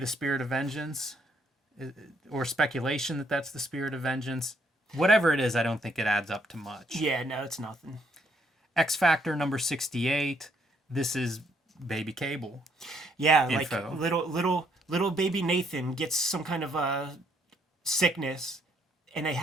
Spirit of Vengeance, or speculation that that's the Spirit of Vengeance. Whatever it is, I don't think it adds up to much. Yeah, no, it's nothing. X Factor number 68. This is Baby Cable. Yeah, Info. like little baby Nathan gets some kind of a sickness, and they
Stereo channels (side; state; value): both; normal; correlation 0.71